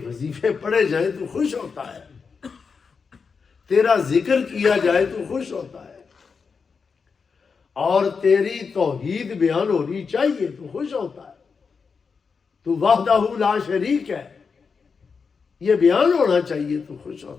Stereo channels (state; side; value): quieter; right; 5.4 dB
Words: وظیفے پڑھے جائیں تو خوش ہوتا ہے، تیرا ذکر کیا جائے تو خوش ہوتا ہے، اور تیری توحید بیان ہونی چاہیے تو خوش ہوتا ہے. تو وحدہ لا شریک ہے، یہ بیان ہونا چاہیے تو خوش